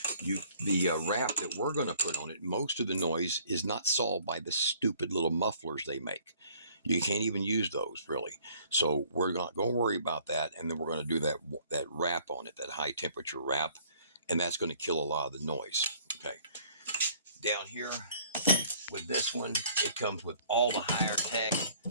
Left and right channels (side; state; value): both; inverted; correlation -0.58